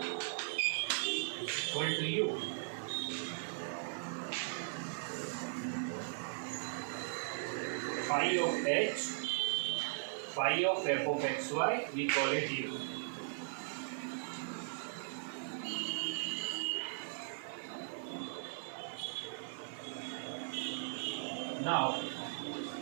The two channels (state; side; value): silent; left; digital silence